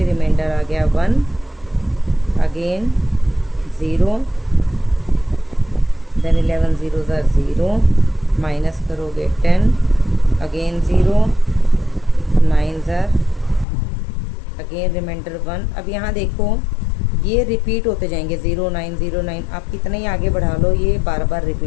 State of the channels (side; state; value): right; drops out; at 13.7 s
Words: रिमाइंडर आ गया 1, again 0, then 11 0s are 0, minus करोगे 10, again 0, 9s are again reminder 1। अब यहाँ देखो ये रिपीट होते जाएंगे, 0 9 0 9। आप कितना ही आगे बढ़ा लो ये बार बार